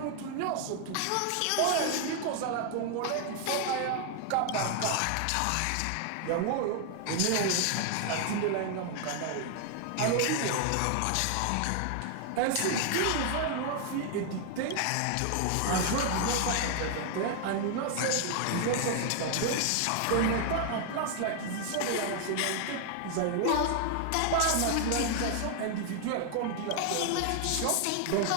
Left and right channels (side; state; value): both; different; correlation 0.00